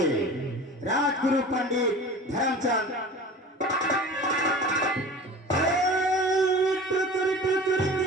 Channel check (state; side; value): normal; both; correlation 0.38